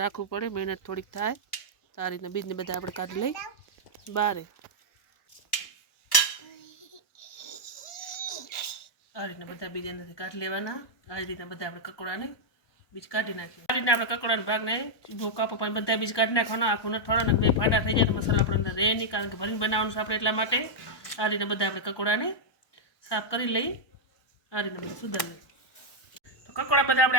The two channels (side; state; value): right; late; 1.2 ms